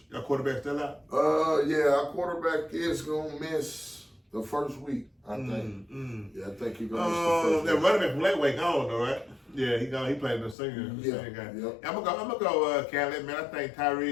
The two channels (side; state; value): right; drops out; at 10.6 s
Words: Your quarterback still out? Our quarterback is gonna miss the first week, I think. Yeah, I think he's gonna miss the first week. That running back from Lakeway gone though, right? Yeah, he gone. He played the senior game. Yep. I'm gonna go Catholic, man. I think